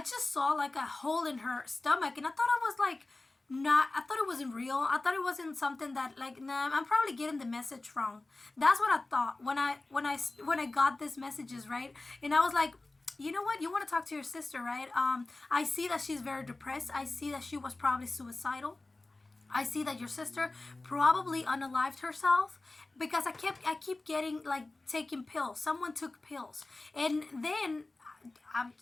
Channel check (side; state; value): right; quieter; 3.1 dB